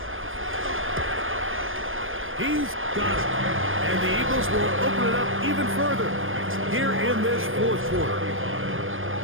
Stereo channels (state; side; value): late; left; 0.59 ms